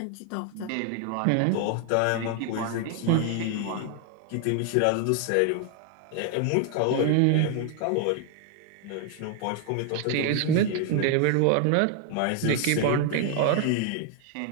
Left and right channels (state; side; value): different; both; correlation 0.00